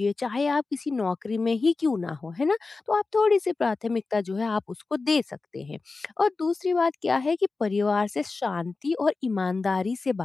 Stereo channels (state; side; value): quieter; right; 3.9 dB